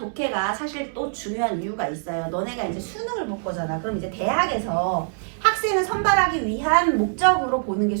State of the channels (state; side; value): silent; left; 63 dB below the other